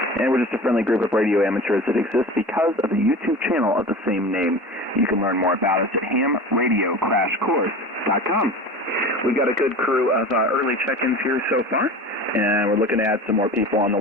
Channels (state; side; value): normal; both; correlation 0.35